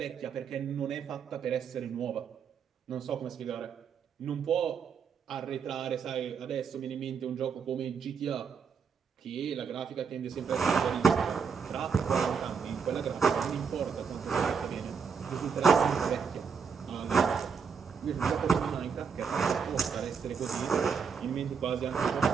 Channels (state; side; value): quieter; left; 6.2 dB